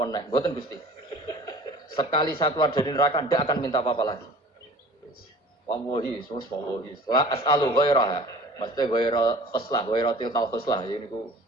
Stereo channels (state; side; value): normal; both; correlation 0.44